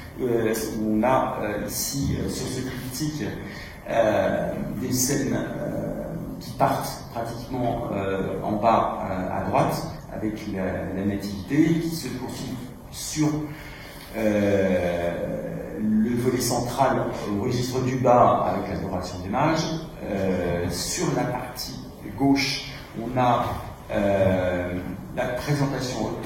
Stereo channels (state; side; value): identical; both; correlation 1.00